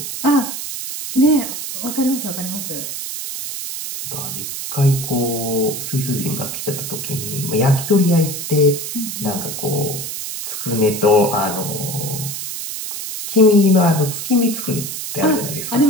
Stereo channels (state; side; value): noise; right; hiss, 6 dB below the sound